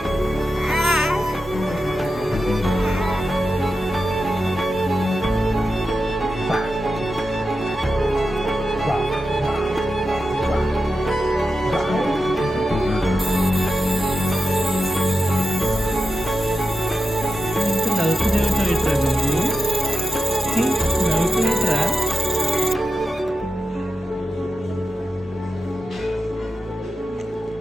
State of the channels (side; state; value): both; normal; correlation 0.90